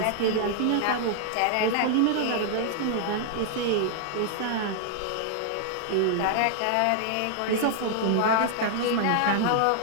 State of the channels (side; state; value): both; different; correlation 0.00